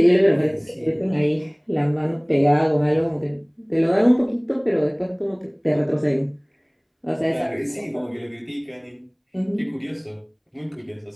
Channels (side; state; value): both; identical; correlation 1.00